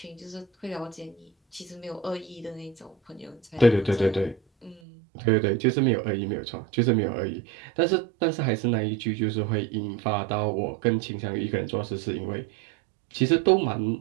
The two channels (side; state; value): left; drops out; at 4.8 s